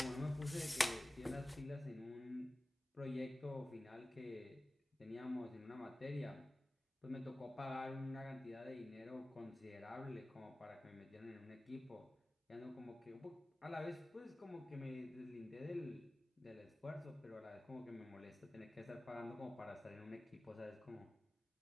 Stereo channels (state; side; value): normal; both; correlation 0.97